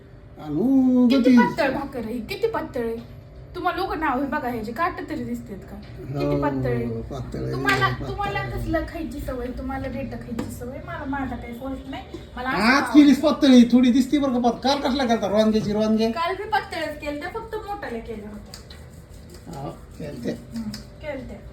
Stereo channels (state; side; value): identical; both; correlation 1.00